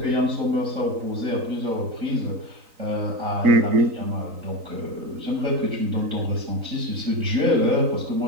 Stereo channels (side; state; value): left; late; 3.9 ms